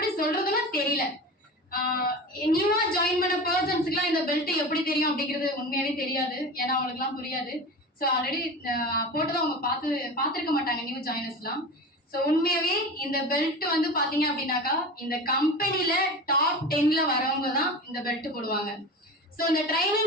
சொல்றதுன்னு தெரியல. நியூவா ஜாயின் பண்ண பர்சன்ஸுக்குலாம் இந்த பெல்ட் எப்படி தெரியும் அப்படிங்கிறது உண்மையாவே தெரியாது. ஏன்னா அவங்களுக்குலாம் புரியாது. ஸோ ஆல்ரெடி போட்டதை அவங்க பார்த்துருக்க மாட்டாங்க நியூ ஜாயினர்ஸ்லாம். ஸோ உண்மையாவே இந்த பெல்ட் வந்து பாத்தீங்க அப்படின்னாக்கா இந்த கம்பெனில டாப் 10ல வரவங்க தான் இந்த பெல்ட் போடுவாங்க. ஸோ இந்த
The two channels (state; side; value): normal; both; correlation 0.31